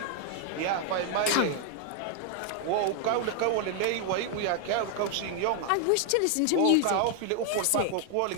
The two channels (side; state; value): both; different; correlation 0.00